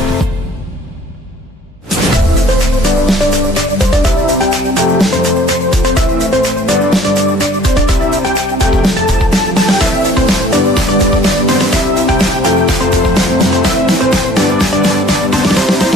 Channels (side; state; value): both; normal; correlation 0.54